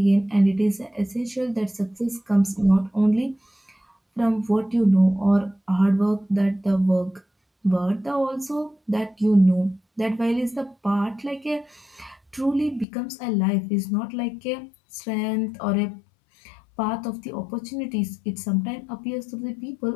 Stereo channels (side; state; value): right; drops out; at 12.9 s